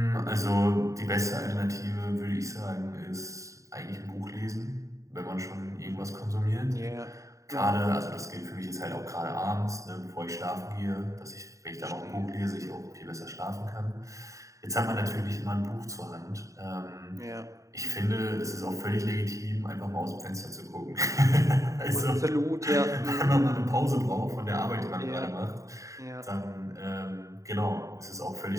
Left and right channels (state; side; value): late; left; 0.16 ms